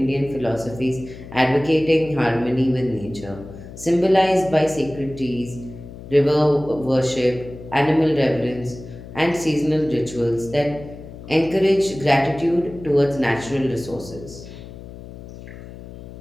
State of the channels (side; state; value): left; noise; hum, 15 dB below the sound